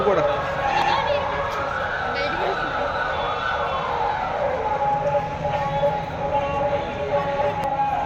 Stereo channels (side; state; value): both; identical; correlation 1.00